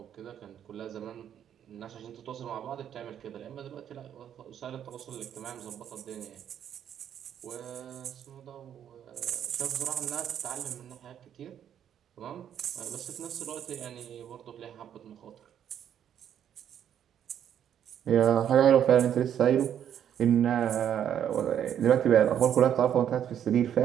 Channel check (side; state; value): left; quieter; 9.6 dB